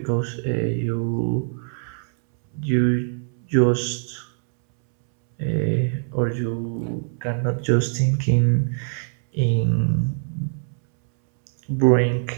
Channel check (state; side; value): silent; left; 63 dB below the other